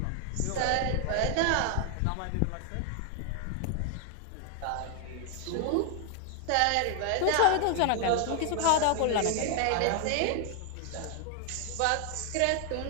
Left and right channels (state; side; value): different; both; correlation 0.00